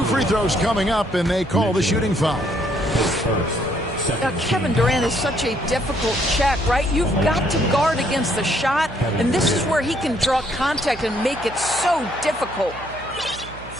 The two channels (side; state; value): right; noise; hum, 17 dB below the sound